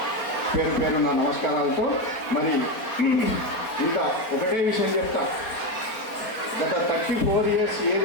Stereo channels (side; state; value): right; late; 4.2 ms